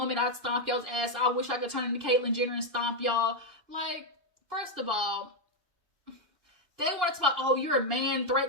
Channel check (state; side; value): late; left; 2.6 ms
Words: I'd stomp y'all's ass. I wish I could turn into Caitlyn Jenner and stomp y'all. Like, first of all, they want to talk about, oh, you're a man